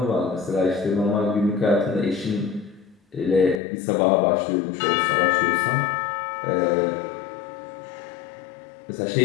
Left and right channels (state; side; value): drops out; right; at 3.6 s